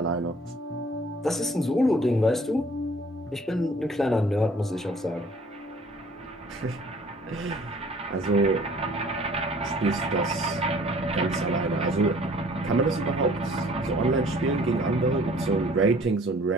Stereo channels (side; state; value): both; normal; correlation 0.54